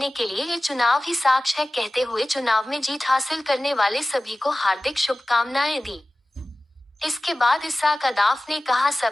के लिए ये चुनाव ही साक्ष्य है, कहते हुए चुनाव में जीत हासिल करने वाले सभी को हार्दिक शुभकामनाएं दी। इसके बाद इसाक अदाफ ने कहा,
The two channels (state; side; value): normal; both; correlation 0.97